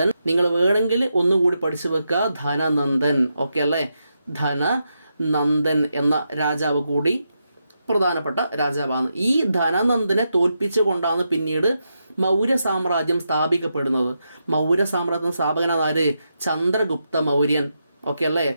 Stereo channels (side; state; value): both; inverted; correlation -0.85